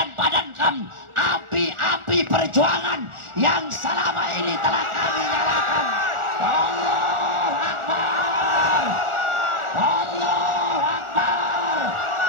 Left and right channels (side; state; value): left; late; 1.4 ms